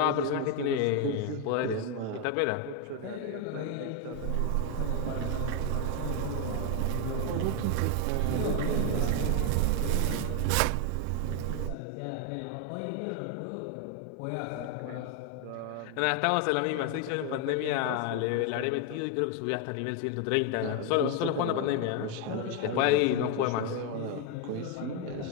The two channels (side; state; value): both; different; correlation 0.01